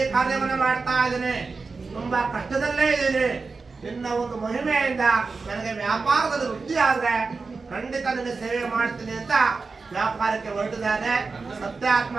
ಕಾರ್ಯವನ್ನು ಮಾಡ್ತಾ ಇದ್ದೇನೆ, ತುಂಬಾ ಕಷ್ಟದಲ್ಲೇ ಇದ್ದೀನಿ. ನಿನ್ನ ಒಂದು ಮಹಿಮೆಯಿಂದ ನನಗೆ ವ್ಯಾಪಾರದಲ್ಲಿ ವೃದ್ಧಿ ಆದ್ರೆ ಖಂಡಿತ ನಿನ್ನ ಸೇವೆ ಮಾಡ್ತೀನಿ ಅಂತ ವ್ಯಾಪಾರಕ್ಕೆ ಹೊರಟಿದ್ದಾನೆ.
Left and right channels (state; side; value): quieter; left; 4.3 dB